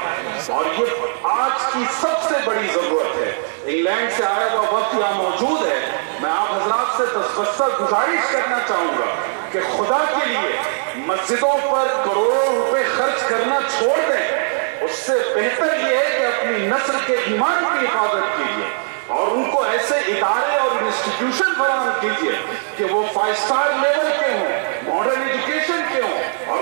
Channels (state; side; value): silent; left; digital silence